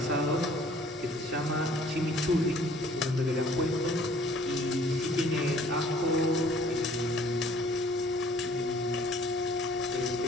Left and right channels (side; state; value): both; normal; correlation 0.56